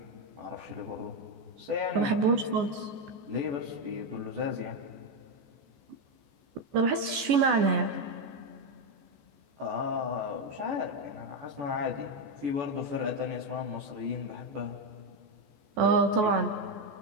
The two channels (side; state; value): left; late; 14 ms